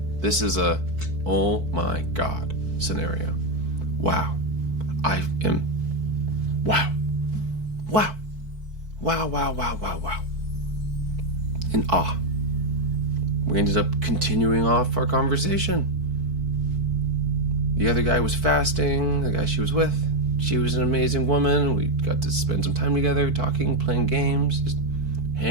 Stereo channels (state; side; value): late; left; 4.5 ms